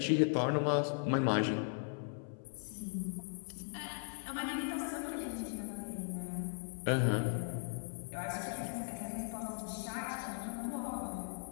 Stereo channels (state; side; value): silent; right; 52 dB below the other